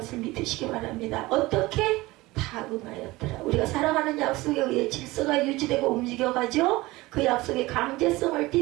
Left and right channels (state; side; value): quieter; left; 20.2 dB